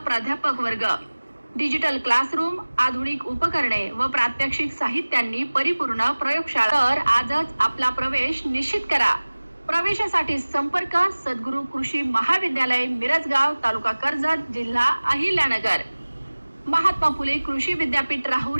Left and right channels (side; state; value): both; inverted; correlation -1.00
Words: प्राध्यापक वर्ग, डिजिटल क्लासरूम, आधुनिक उपकरणे व प्रात्यक्षिक साहित्यांनी परिपूर्ण प्रयोगशाळा। तर आजच आपला प्रवेश निश्चित करा। प्रवेशासाठी संपर्क सद्गुरू कृषी महाविद्यालय मिरजगाव, तालुका कर्जत, जिल्हा अहिल्यानगर, महात्मा फुले कृषी विद्यापीठ